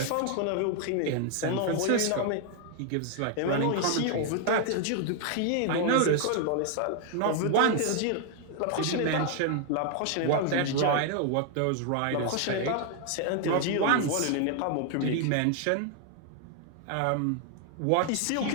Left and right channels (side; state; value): both; different; correlation 0.00